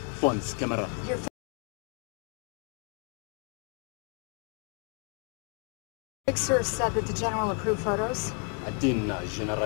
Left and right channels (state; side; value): quieter; right; 38.0 dB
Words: phones, camera. Your fixer said that the general approved photos? Atin